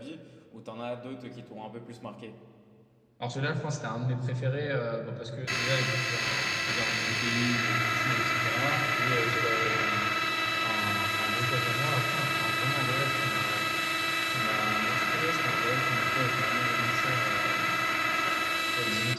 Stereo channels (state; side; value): identical; both; correlation 1.00